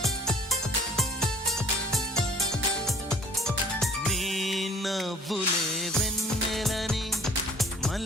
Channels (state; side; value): normal; both; correlation 0.54